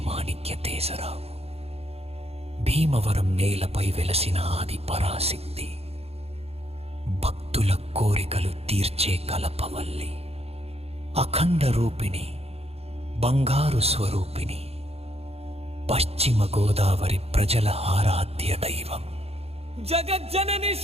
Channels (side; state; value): left; late; 0.29 ms